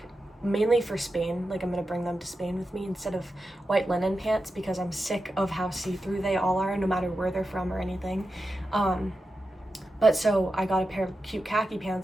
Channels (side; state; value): both; normal; correlation 0.90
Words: mainly for Spain. Like, I'm gonna bring them to Spain with me instead of white linen pants because I'm sick of how see-through they all are, no matter where they're from or anything. But so I got a pair of cute khaki